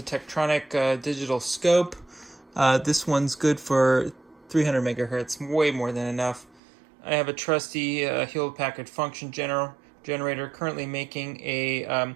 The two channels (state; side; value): drops out; left; at 6.6 s